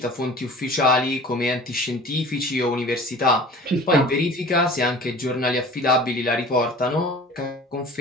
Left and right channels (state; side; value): normal; both; correlation 0.43